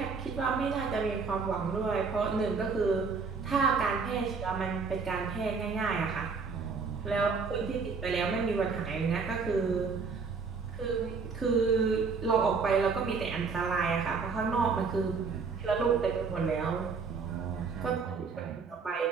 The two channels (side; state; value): left; quieter; 5.0 dB